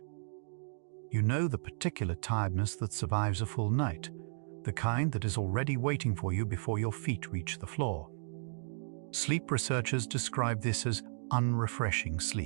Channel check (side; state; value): left; silent; digital silence